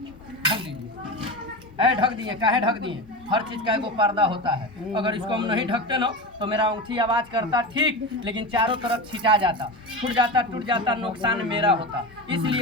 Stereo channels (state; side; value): normal; both; correlation 0.23